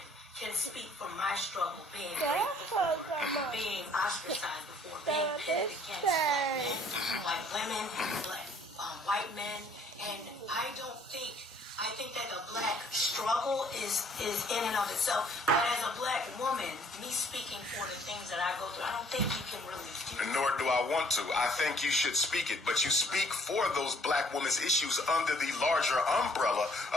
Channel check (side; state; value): both; normal; correlation 0.60